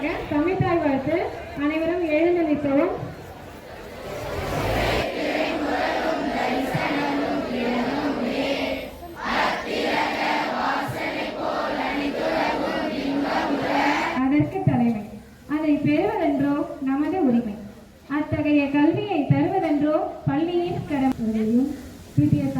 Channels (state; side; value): identical; both; correlation 1.00